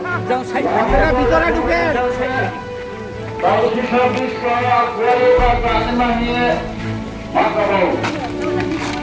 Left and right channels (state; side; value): identical; both; correlation 1.00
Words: যাও সাইড আপনারা ভিতরে ঢুকে বাইরে সব বিষয় করে বাদ মানিয়ে মাকাবো